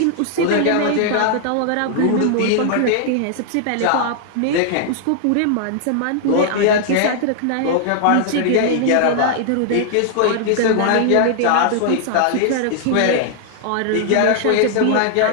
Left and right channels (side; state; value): both; different; correlation -0.01